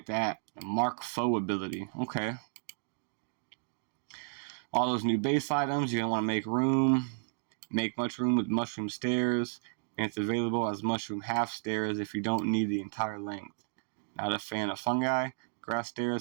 that. Mark Foe ability. Okay. All those new base items, you're going to want to make room. Make much room with mushroom stairs. And it's available as mushroom half stairs if you don't need the entire length. Not a fan of fungi. Grass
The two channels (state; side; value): silent; left; digital silence